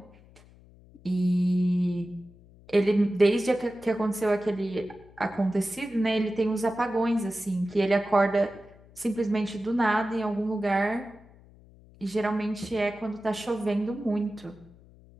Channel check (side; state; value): left; noise; hum, 25 dB below the sound